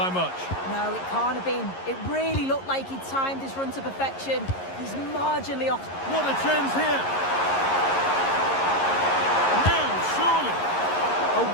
much. No, it can't have been. It really looked like he timed his run to perfection. He's marginally off. What a chance here. Now, surely. A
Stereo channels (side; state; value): right; late; 11 ms